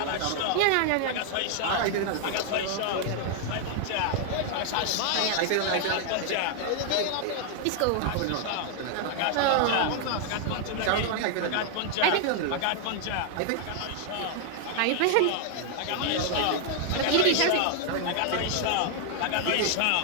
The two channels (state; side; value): different; both; correlation 0.00